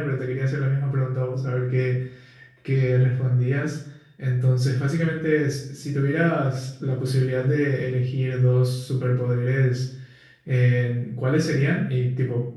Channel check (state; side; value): identical; both; correlation 1.00